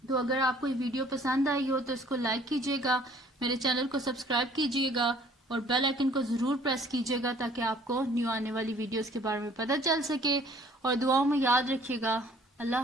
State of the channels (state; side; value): normal; both; correlation 0.56